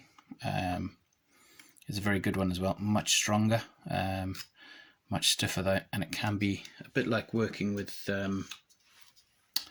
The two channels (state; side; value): identical; both; correlation 1.00